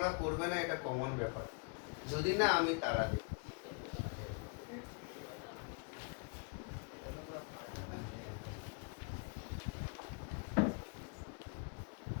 করবে না, এটা কমন ব্যাপার। যদি না আমি তারা দিই।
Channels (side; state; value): right; quieter; 36.3 dB